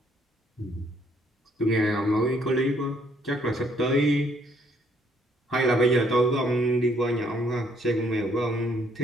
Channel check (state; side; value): normal; both; correlation 0.67